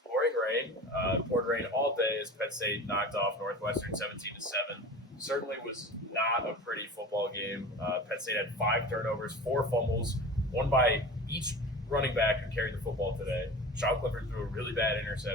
pouring rain. Poured rain all day as Penn State knocked off Northwestern 17-7. Certainly was not a pretty football game. Penn State had 5 turnovers, 4 fumbles, one by each running back who carried the football today. Sean Clifford threw a really bad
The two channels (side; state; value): both; normal; correlation 0.35